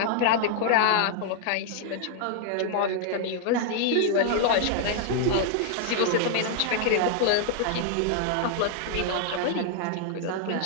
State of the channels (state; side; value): different; both; correlation 0.00